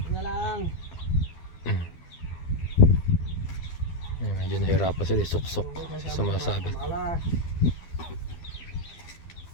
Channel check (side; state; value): right; late; 12 ms